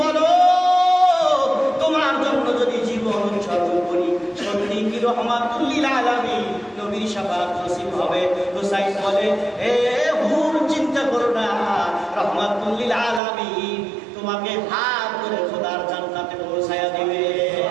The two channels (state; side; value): drops out; left; at 13.2 s